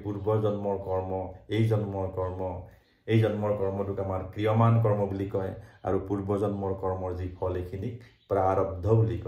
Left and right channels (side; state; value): both; identical; correlation 1.00